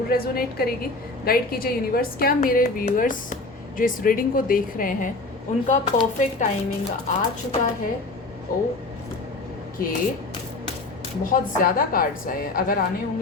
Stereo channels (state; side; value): quieter; right; 3.2 dB